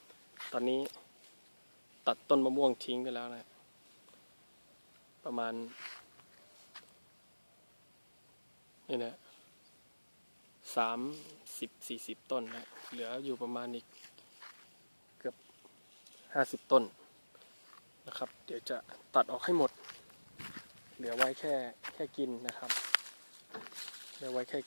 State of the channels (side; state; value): both; inverted; correlation -1.00